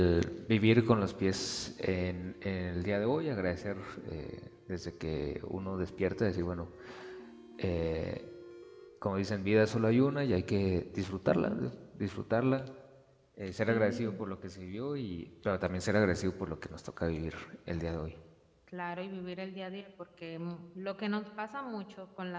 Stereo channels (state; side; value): identical; both; correlation 1.00